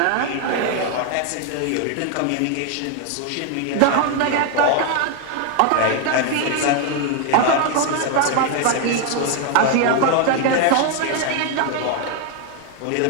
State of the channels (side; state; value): both; different; correlation 0.01